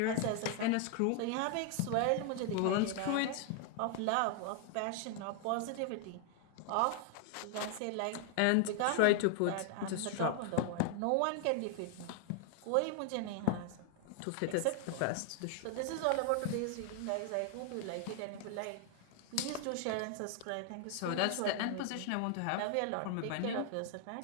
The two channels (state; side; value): different; both; correlation 0.00